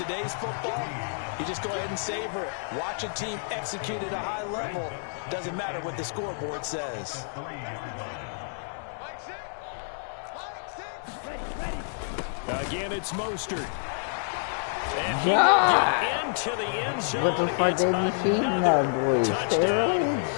football, you just go ahead and savor it. Watch a team execute at a high level. Doesn't matter what the scoreboard says. Again, it's Mostert. And God. into the end zone. What the fuck they be feeding that boy? Steroids?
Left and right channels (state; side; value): silent; right; digital silence